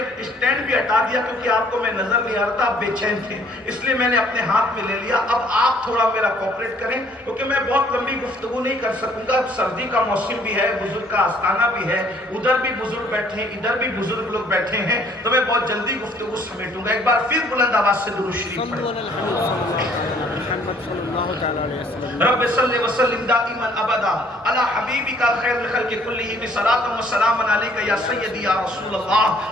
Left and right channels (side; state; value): both; normal; correlation 0.60